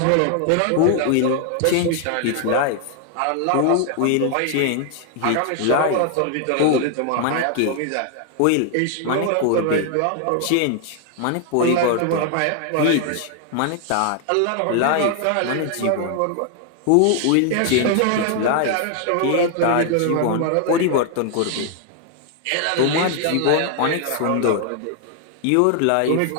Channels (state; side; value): different; both; correlation 0.00